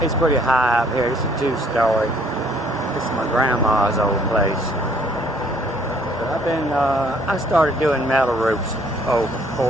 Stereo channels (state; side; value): normal; both; correlation 0.62